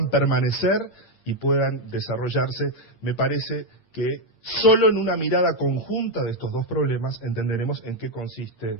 permanecer y puedan desarrollarse, me parece que solo en una mirada conjunta de estos dos problemas entenderemos en qué consiste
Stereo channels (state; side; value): late; right; 8.7 ms